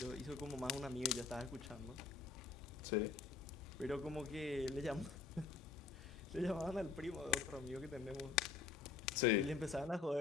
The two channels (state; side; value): quieter; right; 5.1 dB